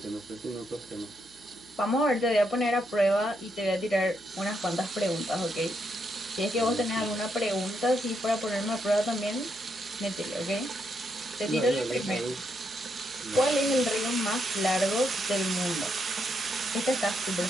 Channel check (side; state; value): left; noise; hum, 29 dB below the sound